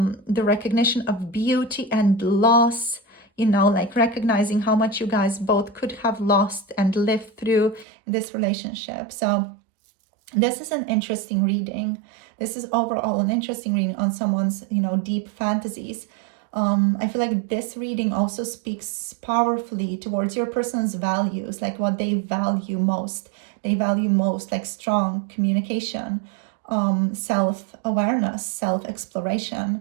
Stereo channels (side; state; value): left; drops out; at 7.9 s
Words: recognition of beauty and loss, like recognizing how much you guys both could have lost and lived through this relationship. So this is an interesting reading. This is overall an interesting reading on someone's, deep fantasies. I feel like this reading also speaks powerfully towards your person's values, like what they value most. They value most like strong communication, self-awareness,